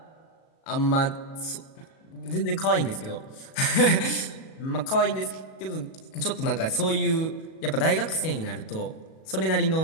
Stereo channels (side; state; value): right; late; 37 ms